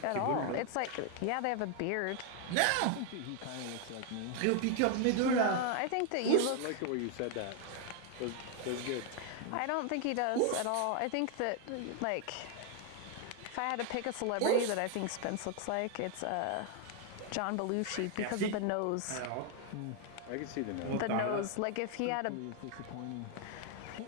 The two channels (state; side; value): different; both; correlation 0.00